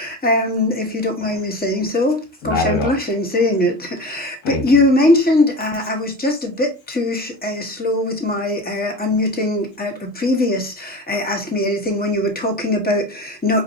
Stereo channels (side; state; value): both; normal; correlation 0.31